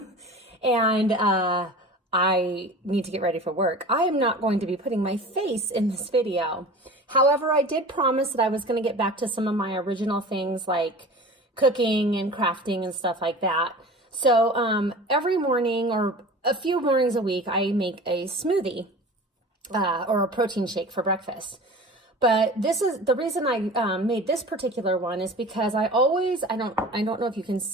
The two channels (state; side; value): normal; both; correlation 0.38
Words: and I need to get ready for work, I am not going to be putting my face in this video. However, I did promise that I was going to get back to some of my original things like cooking and crafting and stuff like that. So every morning or a few mornings a week, I make a smoothie or a protein shake for breakfast. But this is the reason I made this particular one is because I don't know if you can